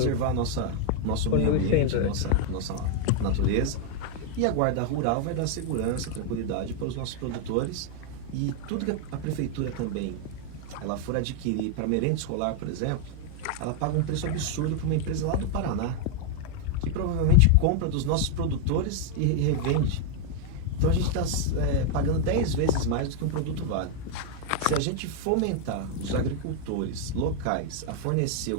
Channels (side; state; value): both; different; correlation 0.00